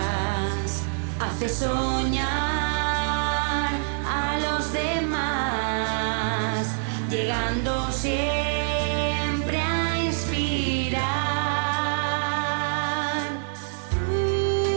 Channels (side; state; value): left; silent; 60 dB below the other